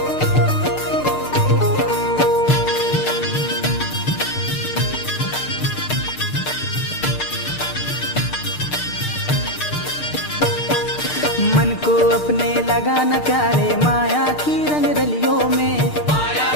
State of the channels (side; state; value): right; late; 6.6 ms